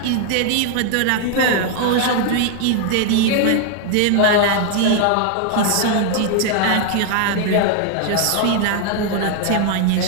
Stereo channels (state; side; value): different; both; correlation 0.00